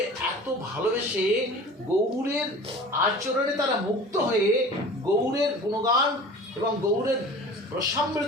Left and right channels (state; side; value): normal; both; correlation 0.40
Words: এত ভালোবেসে গৌরের আচরণে তারা মুক্ত হয়ে গৌরের গুণগান এবং গৌরের